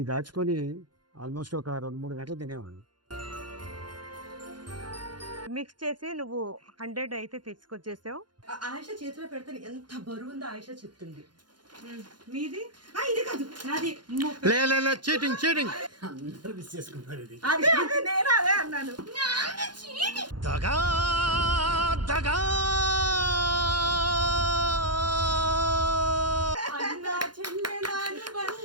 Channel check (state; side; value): late; left; 0.71 ms